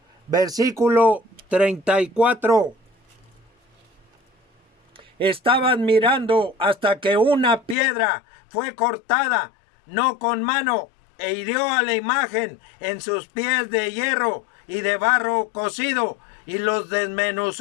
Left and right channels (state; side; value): drops out; right; at 7.8 s